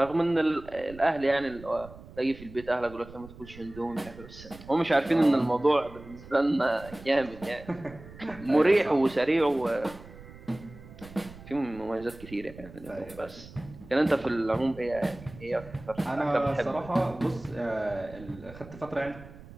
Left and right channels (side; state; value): right; noise; rumble, 18 dB below the sound